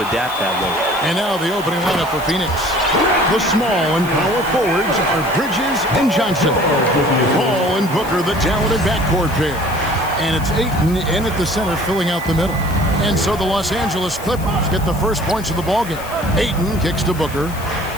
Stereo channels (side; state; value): left; noise; hiss, 16 dB below the sound